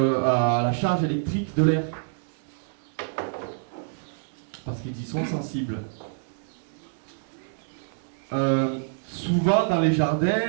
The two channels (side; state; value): left; silent; digital silence